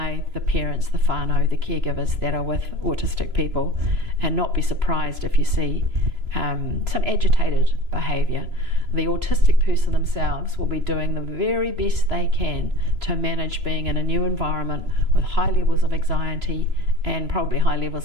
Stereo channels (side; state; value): left; late; 3.0 ms